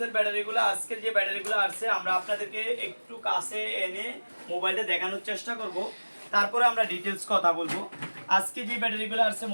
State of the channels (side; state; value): both; inverted; correlation -1.00